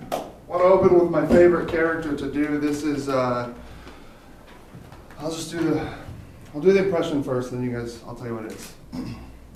I want to open with my favorite character to do. This is, I'll do the impression first, then you guys, I'll tell you what it is.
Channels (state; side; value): identical; both; correlation 1.00